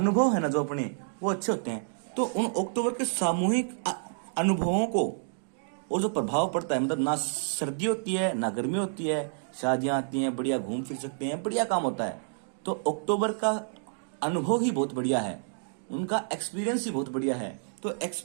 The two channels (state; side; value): silent; left; digital silence